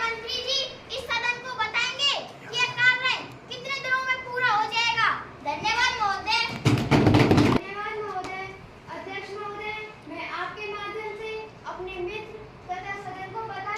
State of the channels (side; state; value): both; identical; correlation 1.00